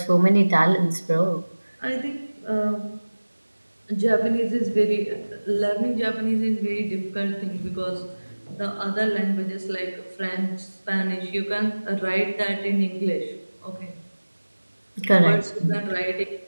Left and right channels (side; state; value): both; inverted; correlation -1.00